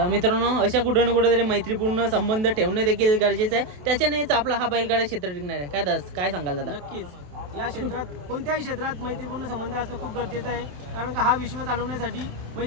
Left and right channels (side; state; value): left; late; 27 ms